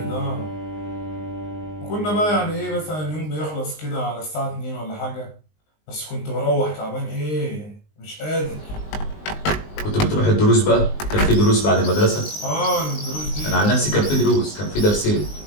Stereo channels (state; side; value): late; right; 19 ms